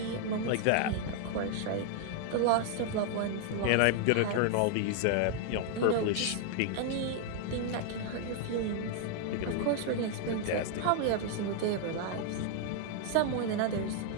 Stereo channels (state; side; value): different; both; correlation 0.00